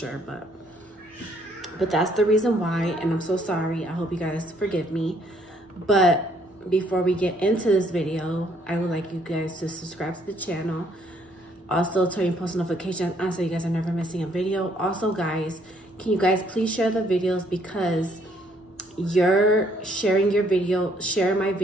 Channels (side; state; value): both; normal; correlation 0.66